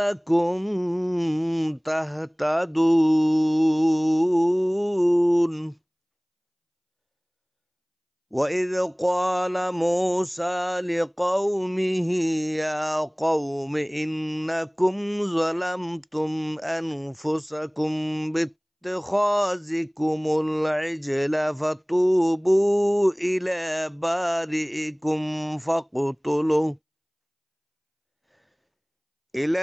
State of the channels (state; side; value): identical; both; correlation 1.00